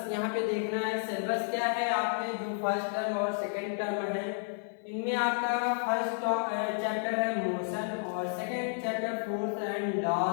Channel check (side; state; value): right; silent; 57 dB below the other